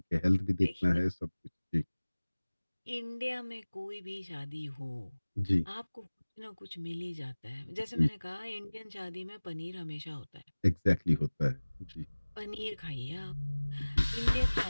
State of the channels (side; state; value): both; inverted; correlation -1.00